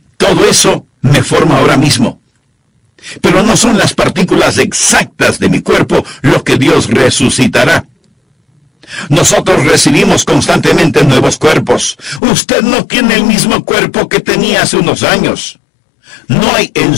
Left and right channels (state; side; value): drops out; right; at 12.2 s